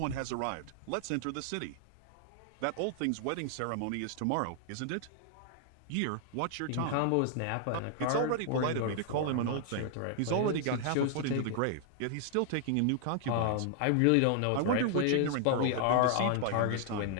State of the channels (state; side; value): different; both; correlation 0.00